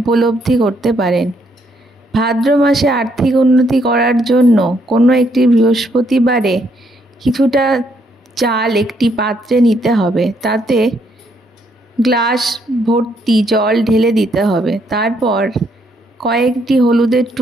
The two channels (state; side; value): normal; both; correlation 0.72